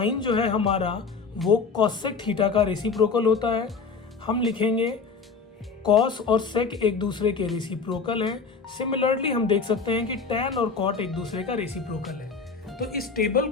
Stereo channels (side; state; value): right; quieter; 5.0 dB